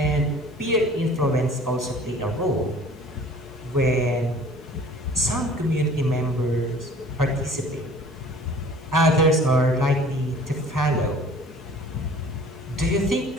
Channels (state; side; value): normal; both; correlation 0.49